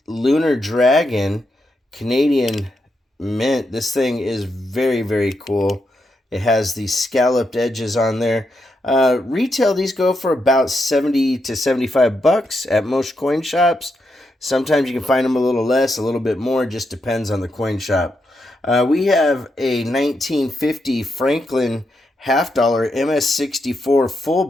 Lunar Dragon Canadian Mint. This thing is very, very cool. It has these scalloped edges on there. Retail, these go for about 70 to 75 bucks at most coin shops. Sometimes you can find them a little less, a little bit more. Just depends on the coin shop. We have a 1950 Franklin half dollar MS64 full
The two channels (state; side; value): normal; both; correlation 0.83